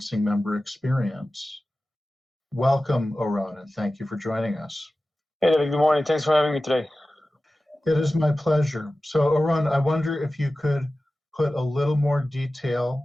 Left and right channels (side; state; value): both; normal; correlation 0.95